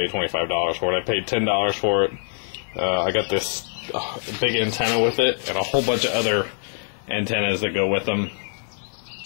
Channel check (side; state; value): right; silent; 63 dB below the other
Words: $25 for it. I paid $10 for it. I got this big antenna with it and a whole bunch of other antennas that go with them.